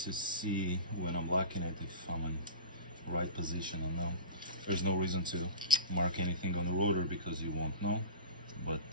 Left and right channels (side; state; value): both; inverted; correlation -0.31